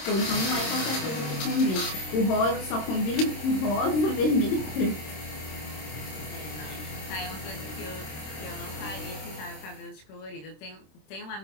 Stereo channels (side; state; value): right; late; 26 ms